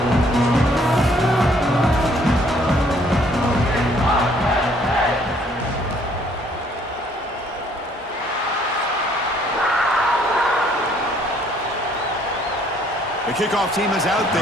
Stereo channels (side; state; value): both; normal; correlation 0.63